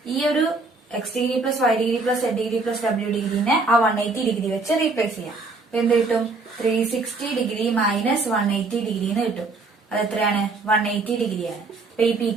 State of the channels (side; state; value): left; quieter; 3.7 dB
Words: ഈ ഒരു X degree plus Y degree plus Z degree plus W ഡിഗ്രിനെ ആ 180 ഡിഗ്രി വെച്ച് റീപ്ലേസ് ചെയ്യാം. അപ്പൊ എന്ത് കിട്ടും, 360 ഡിഗ്രി മൈനസ് 180 ഡിഗ്രി എന്ന് കിട്ടും. അത് എത്രയാണ്, 180 ഡിഗ്രിയാണ്. അപ്പൊ ഈ പി